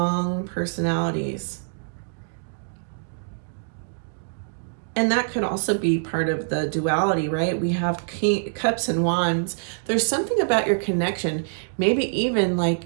personalities. And that could also be part of the duality, right? We have Cups and Wands. There's something about your connection. Maybe even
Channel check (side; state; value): left; silent; digital silence